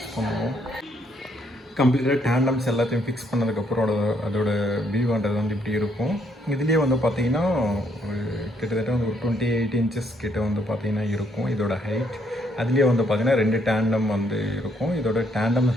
பண்ணுவோம். கம்ப்ளீட்டாக டேண்டம்ஸ் எல்லாத்தையும் ஃபிக்ஸ் பண்ணதுக்கப்புறம் அதோட வியூன்றது இப்படி இருக்கும். இதுலேயே பார்த்தீங்கன்னா கிட்டத்தட்ட ஒரு 28 இன்ச்சஸ் கிட்ட பார்த்தீங்கன்னா இருக்கும் இதோட ஹைட். அதுலேயே பார்த்தீங்கன்னா 2 டேண்டம் இருக்கும். இதோட டேண்டம்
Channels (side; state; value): both; normal; correlation 0.70